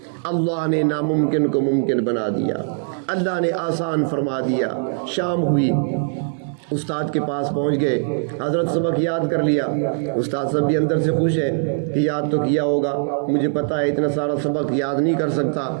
اللہ نے ناممکن کو ممکن بنا دیا، اللہ نے آسان فرما دیا۔ شام ہوئی، استاد کے پاس پہنچ گئے، حضرت سبق یاد کر لیا۔ استاد صاحب بھی اندر سے خوش ہیں کہ یاد تو کیا ہوگا، مجھے پتا ہے اتنا سارا سبق یاد نہیں کر سکتا،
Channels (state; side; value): silent; left; digital silence